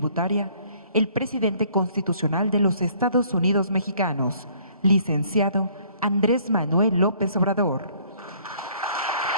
el presidente constitucional de los Estados Unidos mexicanos, licenciado Andrés Manuel López Obrador.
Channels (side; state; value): both; inverted; correlation -0.59